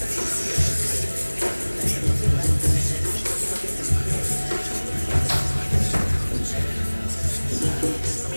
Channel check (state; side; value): inverted; both; correlation -1.00